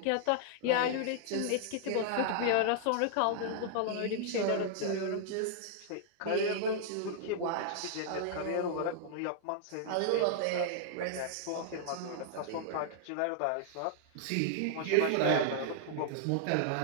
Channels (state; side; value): different; both; correlation -0.01